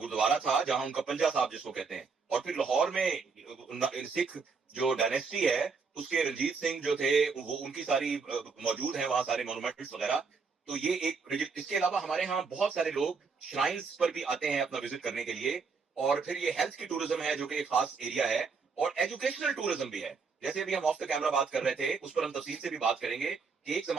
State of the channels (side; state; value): left; quieter; 5.1 dB